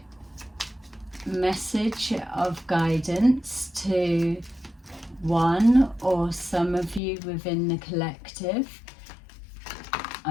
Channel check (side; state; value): right; drops out; at 7.0 s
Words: message of guidance to one or some of you within the collective.